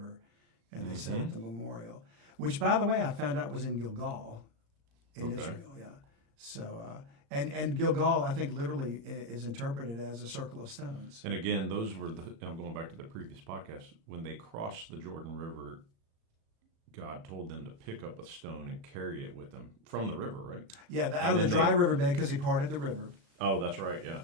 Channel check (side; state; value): left; late; 36 ms